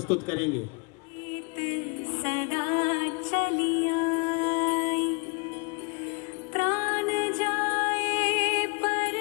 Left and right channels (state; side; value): quieter; right; 30.3 dB